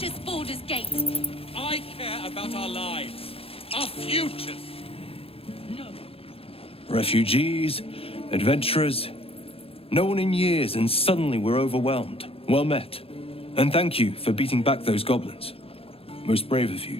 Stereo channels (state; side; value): late; right; 0.27 ms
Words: Baldur's Gate. I care about our lives, our futures. No. Refugees, adventurers, no one in years, and suddenly we're overwhelmed. Well met. And thank you for beating back those goblins. Most brave of you.